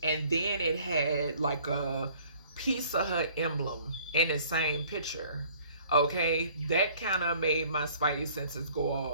And then it had like a Pizza Hut emblem in the same picture. Okay, that kind of made my spidey senses go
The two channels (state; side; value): inverted; both; correlation -0.56